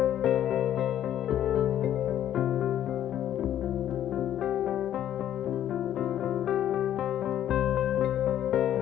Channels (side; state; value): right; quieter; 11.2 dB